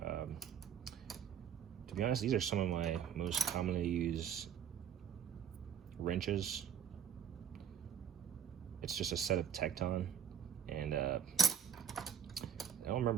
To be honest, these are some of my most commonly used wrenches. It's just a set of Tecton, and I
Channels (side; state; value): left; quieter; 8.4 dB